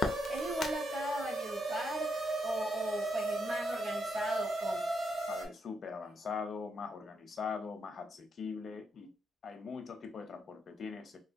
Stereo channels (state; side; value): normal; both; correlation 0.79